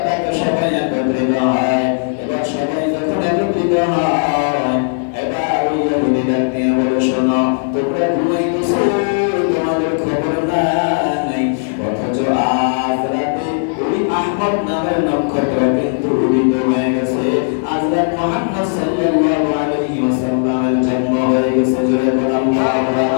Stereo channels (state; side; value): silent; right; digital silence